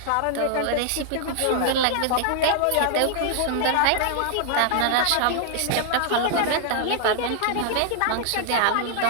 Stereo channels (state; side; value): different; both; correlation -0.01